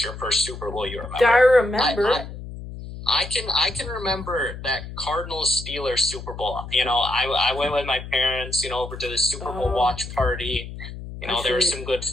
your first Super Bowl you remember. I remember. I can remember that Cardinals-Steelers Super Bowl. I went with my parents, over to the Super Bowl watch party. There was some good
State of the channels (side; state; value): left; noise; hum, 11 dB below the sound